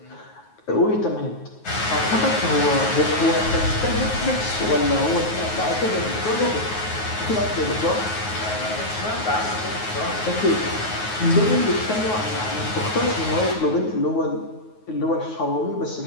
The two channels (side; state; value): right; late; 9.4 ms